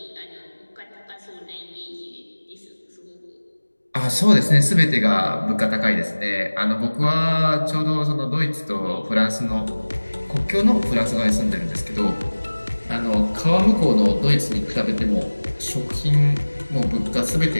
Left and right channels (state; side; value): inverted; both; correlation -1.00